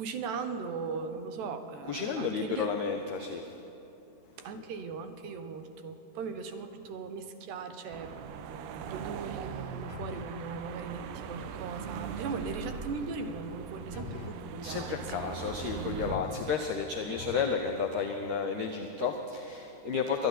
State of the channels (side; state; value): left; late; 13 ms